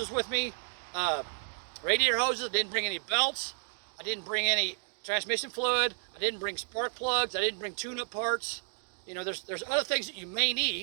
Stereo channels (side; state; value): left; silent; digital silence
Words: with me. Radiator hoses, I didn't bring any belts, I didn't bring any transmission fluid, I didn't bring spark plugs, I didn't bring tune-up parts. You know, there's other things that you may